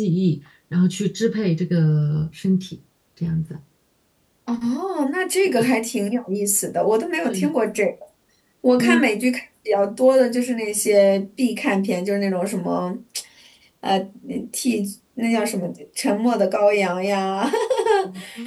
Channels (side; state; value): both; identical; correlation 1.00